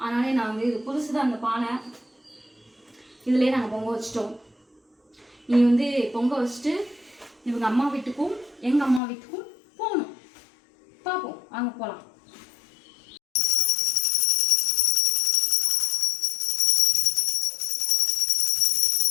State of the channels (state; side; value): drops out; right; at 9.0 s